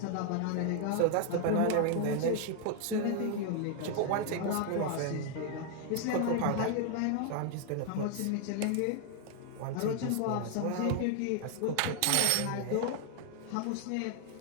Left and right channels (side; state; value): both; different; correlation 0.00